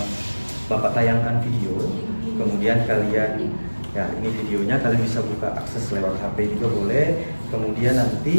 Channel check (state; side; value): inverted; both; correlation -1.00